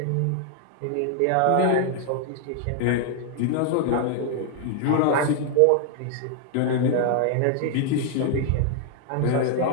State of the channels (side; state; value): both; different; correlation 0.00